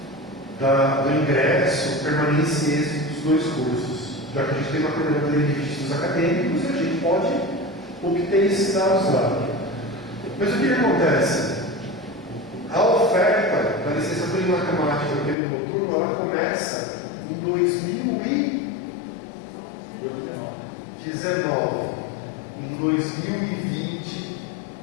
do ingresso, permanência e êxito dos 2 cursos, já que a gente tem uma coordenadoria de registros acadêmicos e a gente pode obter esses dados lá. Mas o que acontece? A oferta da licenciatura em matemática no período noturno, ela começa em 2019. Em 2020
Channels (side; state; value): right; drops out; at 15.4 s